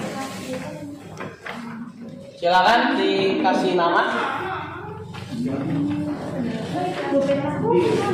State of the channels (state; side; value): identical; both; correlation 1.00